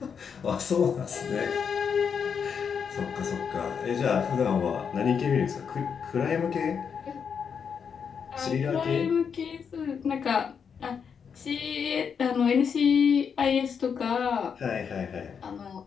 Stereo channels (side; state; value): right; quieter; 6.7 dB